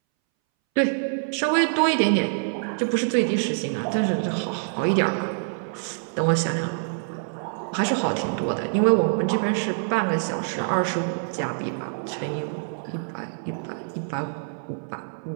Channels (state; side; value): silent; left; 61 dB below the other